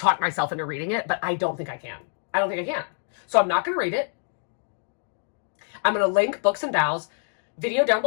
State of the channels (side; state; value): right; silent; digital silence